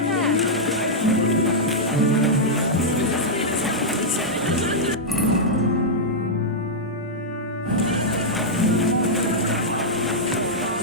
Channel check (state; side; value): normal; both; correlation -0.06